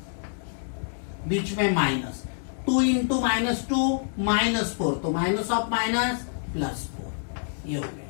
बीच में माइनस, 2 इंटू -2 -4, तो माइनस ऑफ माइनस +4, ये हो गया।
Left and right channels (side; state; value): right; silent; digital silence